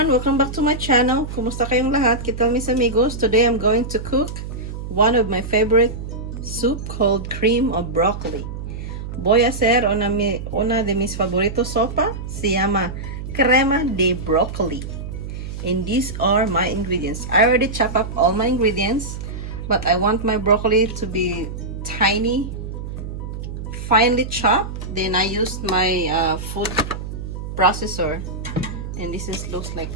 everyone! Welcome back to my channel. Kumusta kayong lahat? Kita mis amigos. Today I'm going to cook one of my favorite soup called cream of broccoli. Voy a hacer una de mis favoritos sopa. Se llama crema de broccoli. And these are my ingredients. I already chopped up all my ingredients, but I want my broccoli to be tiny, finely chopped. Then I used my food processor. And looks like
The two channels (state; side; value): noise; right; hum, 8 dB below the sound